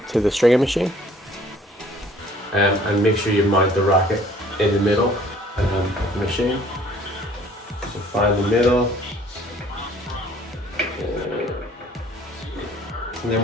to the stringing machine. And make sure you mount the racket in the middle of the machine. So find the middle. And then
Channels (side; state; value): both; normal; correlation 0.56